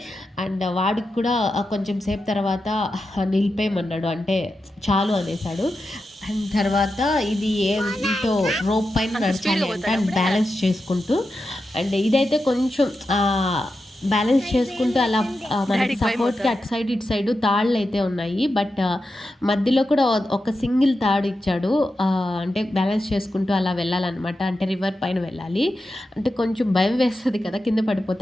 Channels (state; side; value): normal; both; correlation 0.89